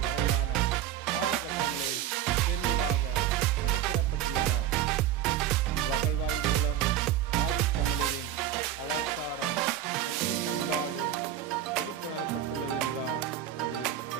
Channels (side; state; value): left; quieter; 11.1 dB